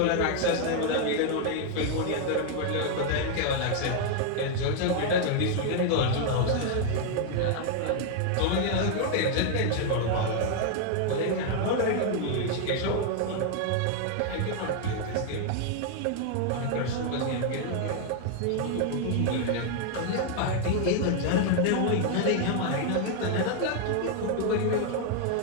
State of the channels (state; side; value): different; both; correlation 0.00